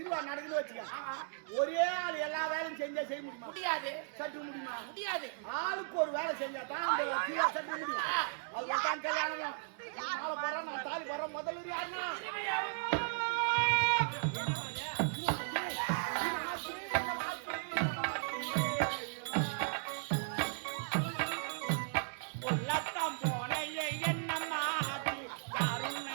நடக்குன்னு வச்சுக்க. ஒரே ஆள் எல்லா வேலையும் செஞ்சா செய்ய முடியுமா? முடியாது. சற்று முடியுமா? முடியாது. ஆளுக்கு ஒரு வேலை செஞ்சா தான் அந்த திருவா சற்று முடியும். அது தான் கல்யாணம். மாலை போறான், நான் தாலி போறேன். முதல்ல யாருன்னா உள்ளத்தான் போன என்னம்மா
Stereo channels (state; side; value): silent; left; digital silence